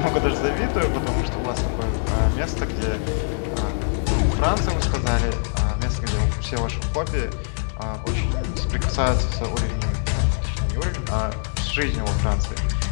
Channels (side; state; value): right; silent; digital silence